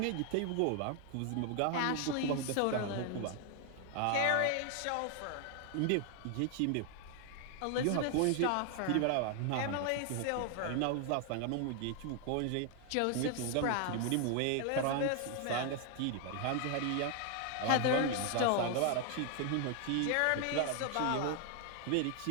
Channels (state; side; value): different; both; correlation 0.00